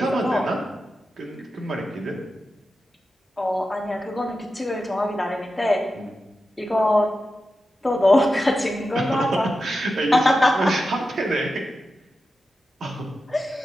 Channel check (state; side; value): normal; both; correlation 0.91